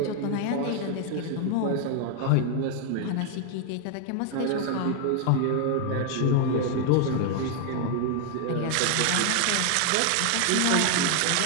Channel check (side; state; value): both; different; correlation 0.00